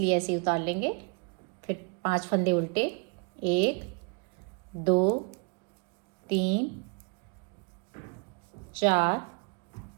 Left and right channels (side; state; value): left; quieter; 36.5 dB